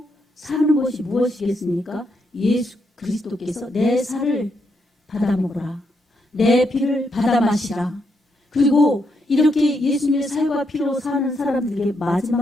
사는 것이 무엇이겠습니까? 예수 그리스도께서 내 살을 받아 먹으라, 내 피를 받아 마시라. 그리고 이렇게 예수님의 살과 피로 사는 사람들에게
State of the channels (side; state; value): both; normal; correlation 0.79